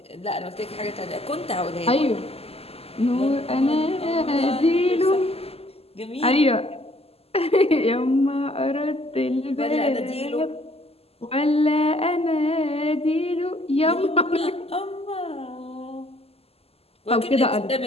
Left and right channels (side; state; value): right; late; 0.29 ms